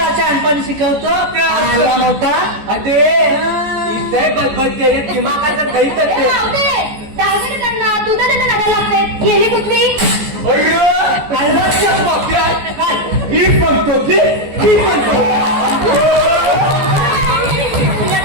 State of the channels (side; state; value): left; late; 14 ms